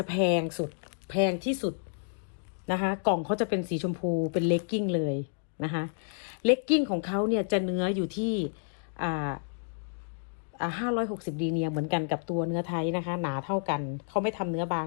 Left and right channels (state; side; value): silent; right; digital silence